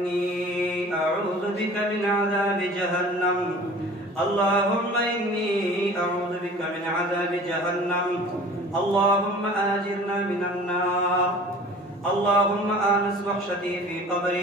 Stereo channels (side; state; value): both; normal; correlation 0.44